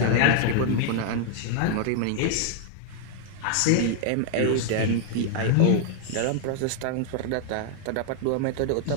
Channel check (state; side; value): different; both; correlation 0.00